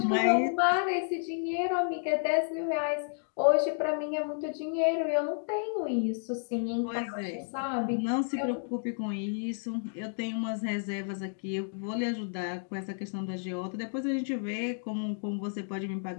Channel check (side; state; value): right; silent; digital silence